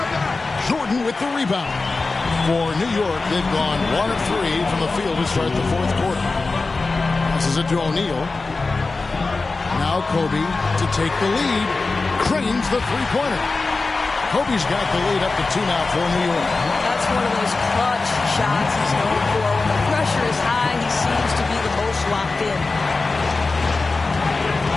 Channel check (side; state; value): right; quieter; 3.7 dB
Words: Jordan with the rebound. For New York, they've gone 1 of 3 from the field to start the 4th quarter. Passes it to O'Neal. Now Kobe to take the lead. Cranes the 3-pointer. Kobe's got the lead up to 2 now for New York. That's one of those clutch shots he's known for. When the pressure is high, he seems to be the most locked in.